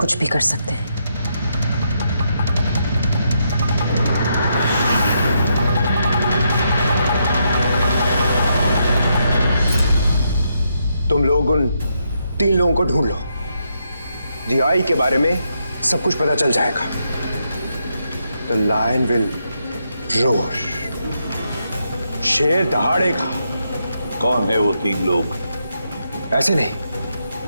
भी कर सकते हैं। तुम लोग उन 3 लोगों को ढूंढ लो। DI के बारे में सब कुछ पता चल जाएगा। The lion will roar. शेर दहाड़ेगा। कौन है वो 3 लोग? ऐसे नहीं,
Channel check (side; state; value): both; inverted; correlation -0.80